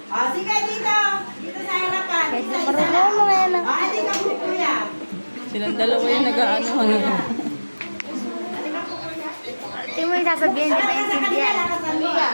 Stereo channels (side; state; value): both; inverted; correlation -1.00